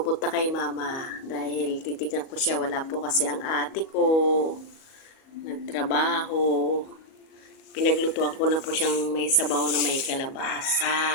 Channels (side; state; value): right; late; 37 ms